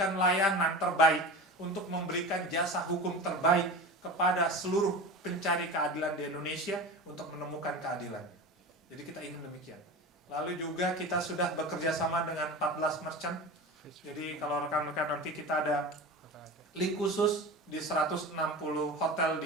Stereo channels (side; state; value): both; normal; correlation 0.30